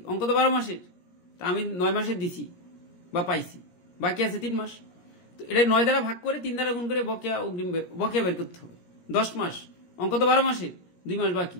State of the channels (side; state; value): right; late; 17 ms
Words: অঙ্ক তো 12 মাসের, তা আমি 9 মাসের দিছি বা পাইছি, বাকি আছে 3 মাস, তো এটা 9 দ্বারা ভাগ করে 3 দ্বারা গুণ করে বকেয়া বের করতে হবে। 10 মাস, অঙ্ক তো 12 মাসের, 2 মাস বাকি,